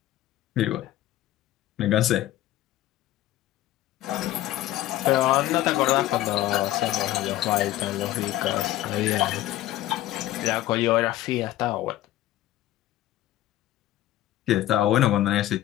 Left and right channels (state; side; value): quieter; right; 14.4 dB